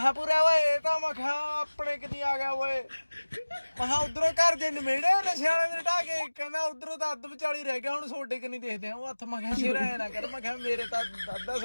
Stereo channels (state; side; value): inverted; both; correlation -1.00